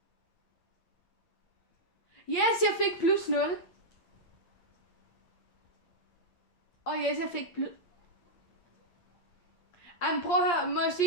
Yes, jeg fik plus 0. Og yes, jeg fik plus... Jamen, prøv at høre. Må jeg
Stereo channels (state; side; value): late; right; 8.6 ms